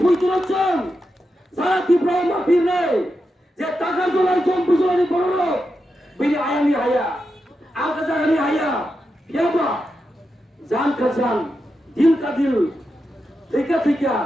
puito locong, salah Tipra mafir nai. Je Takarjala jompujola ni borong, bini ayam ni haya, alkaza ni haya. Siapa? Jan kajan, dil kadil, tika,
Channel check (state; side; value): normal; both; correlation 0.88